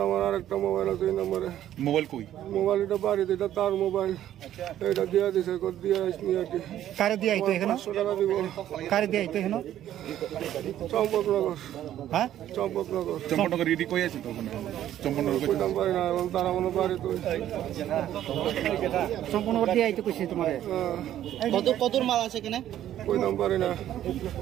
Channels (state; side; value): quieter; left; 11.9 dB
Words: আমার আর একটা মোবাইল আছে এই নম্বরে। মোবাইল কই? মোবাইল এটা বাড়িতে, এটা তার মোবাইল, এটা দিয়া দিছে কত দিয়া আসনি আর কি। কারে দিয়ে আইতো এখানে? 500 টাকা দিব। কারে দিয়ে আইতো এখানে? চম্পকনগর। হ্যাঁ, চম্পকনগর রেডি কই আছে তো ওখানে? চম্পকনগর কই? কইতাম পারি না, তারা মনে বাড়ি তো। সম্পূর্ণ দিয়ে আইতো কইছে তোমারে? কতর মাল আছে এখানে? কইতাম পারি না।